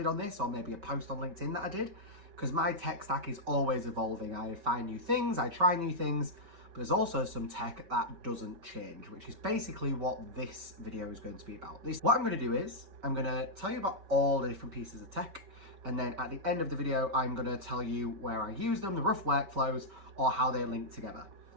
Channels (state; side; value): late; left; 5.2 ms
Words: on this, or maybe a post on LinkedIn that I did, because my tech stack is always evolving. I find new things, I try new things, but there's also some tech that doesn't change, which is basically what this video is going to be about. What I'm going to do is, I'm going to tell you about all the different pieces of tech, and then at the end of the video, I'm going to tell you where I use them, the rough workflows, or how they link together.